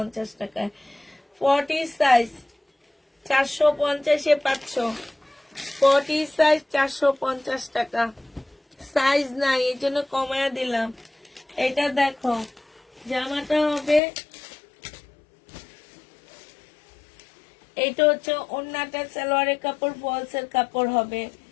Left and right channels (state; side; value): drops out; right; at 14.0 s